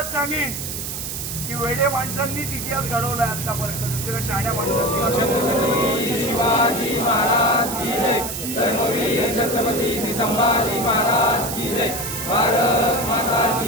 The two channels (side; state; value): right; noise; hiss, 5 dB below the sound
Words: सांगेन की वेडे माणसांनीच इतिहास घडवलाय आतापर्यंत, दुसऱ्या शहाण्या माणसांनी। शिवाजी महाराज की जय, धर्मवीर छत्रपती संभाजी महाराज की जय, भारत माता